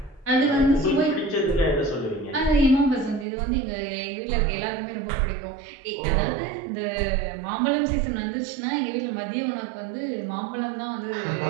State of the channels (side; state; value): left; drops out; at 3.2 s